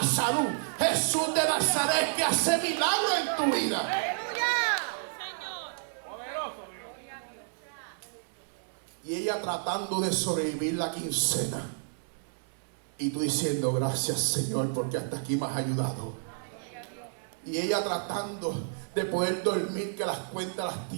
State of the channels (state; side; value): silent; left; digital silence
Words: salud. Jesús de Nazaret es que hace milagros en tu vida. Y ella tratando de sobrevivir la quincena. Y tú diciendo, gracias Señor, porque hasta aquí me has ayudado. Y ella tratando de poder dormir, que las cuentas las